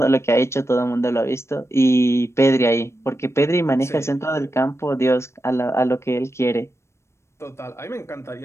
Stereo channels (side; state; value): right; late; 0.13 ms